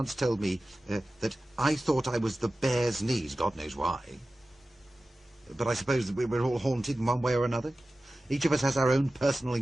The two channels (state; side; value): normal; both; correlation 0.95